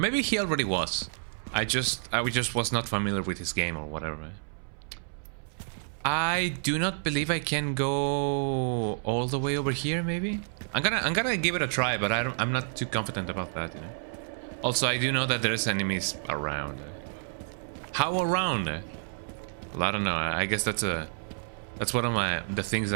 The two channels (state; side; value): silent; left; 58 dB below the other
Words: he already was. I just was not familiar with his game or whatever. I do not believe I can go all the way over here. Maybe I'm gonna give it a try, but I'm not too confident about that. You know. Also, I do know that there's enemies around. How around? Well, I don't know. I guess that's one of the things